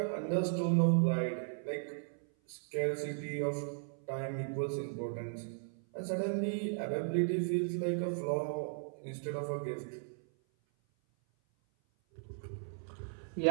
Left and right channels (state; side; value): silent; left; 53 dB below the other